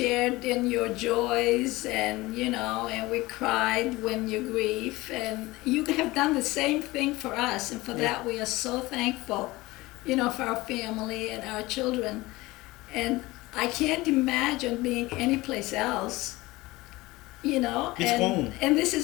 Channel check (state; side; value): quieter; right; 20.3 dB